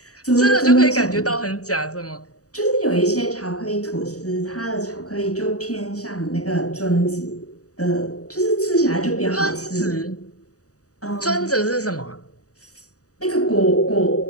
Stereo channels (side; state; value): right; late; 0.66 ms